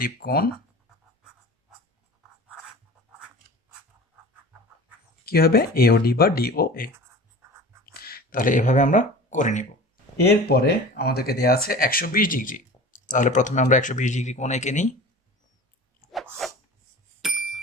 কোণ কি হবে এওডি বা ডিওএ। তাহলে এভাবে আমরা করে নিব। এরপরে আমাদেরকে দেওয়া আছে 120 ডিগ্রি। তাহলে প্রথমে আমরা 120 ডিগ্রি কোণ এঁকে নিই।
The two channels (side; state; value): both; normal; correlation 0.37